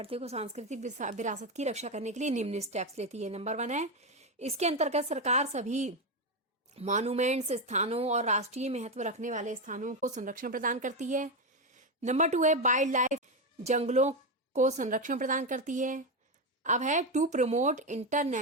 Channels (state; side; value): normal; both; correlation 0.10